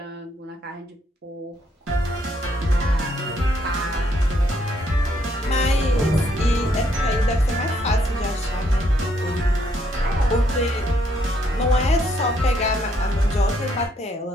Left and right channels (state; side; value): normal; both; correlation 0.72